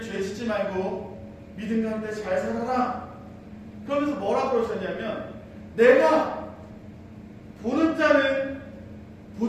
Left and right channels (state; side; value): identical; both; correlation 1.00